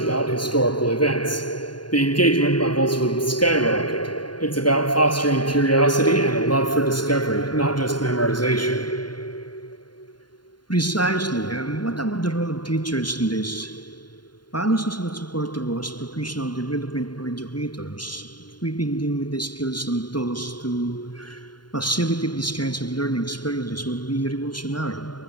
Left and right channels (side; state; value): right; late; 0.71 ms